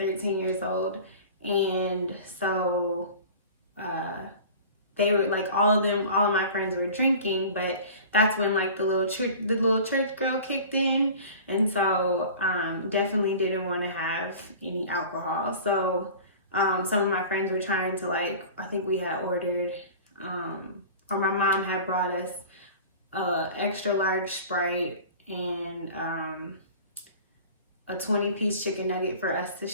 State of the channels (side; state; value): both; inverted; correlation -0.40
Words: years old, and so they were like, all of my friends were drinking, but that's when like the little church girl kicked in, and so definitely didn't want to have any alcohol. So some of my friends were trying to, like, I think we had ordered or my mom had brought us extra large Sprite and a 20-piece chicken nugget for us to